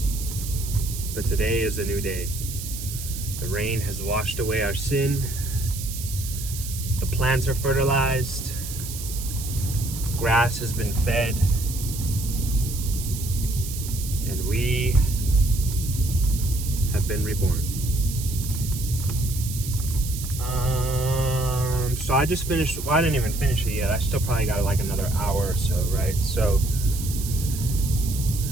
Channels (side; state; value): right; noise; hiss, 9 dB below the sound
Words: but today is a new day. The rain has washed away our sin. The plants are fertilized. Grass has been fed. And we have been reborn. So I just finished, well, I didn't even finish it yet. I still probably got like another hour or so, right? So,